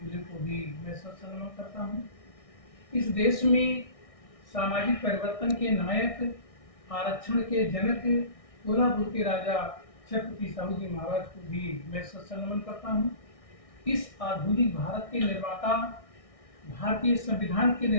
को भी मैं सलाम करता हूँ। इस देश में सामाजिक परिवर्तन के नायक, आरक्षण के जनक, कोल्हापुर के राजा छत्रपति साहू जी महाराज को भी मैं सलाम करता हूँ। इस आधुनिक भारत के निर्माता, भारतीय संविधान के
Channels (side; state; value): right; late; 1.6 ms